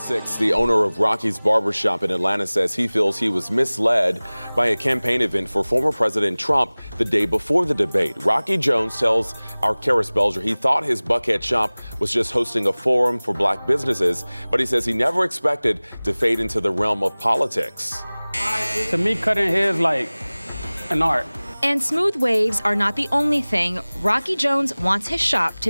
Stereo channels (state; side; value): inverted; both; correlation -1.00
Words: the owner of Rocky's Barber Shop in Atlanta says he feels he was misled by a campaign event for former President Trump the day before the debate. Rocky Jones tells our Karis Belger he thought his Buckhead shop was just hosting a forum for black businesses, but he says he never expected to fade into the realm of politics. To me, cutting hair is like an art. And smooth waves are not the only thing Rocky Jones wants his shop